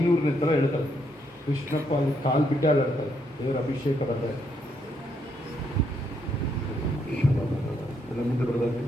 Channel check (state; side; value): normal; both; correlation 0.75